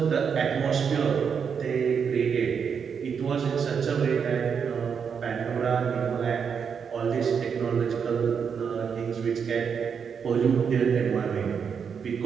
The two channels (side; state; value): left; quieter; 6.7 dB